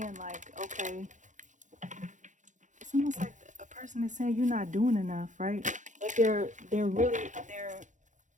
like, okay, it's almost like a person is saying you're not doing enough, right? But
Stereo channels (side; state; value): left; late; 0.36 ms